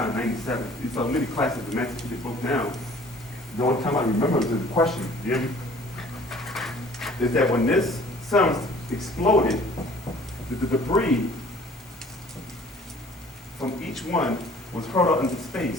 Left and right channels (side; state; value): both; normal; correlation 0.52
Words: in 97. You saw many classes the master teacher broke down. The only time I remember is the question, you hear me? Is that when this sun exploded, the debris from each one was hurled out into